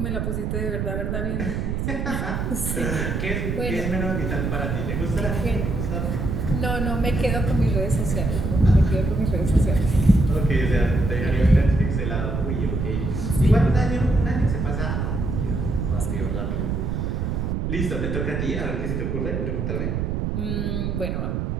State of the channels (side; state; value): right; noise; rumble, 1 dB below the sound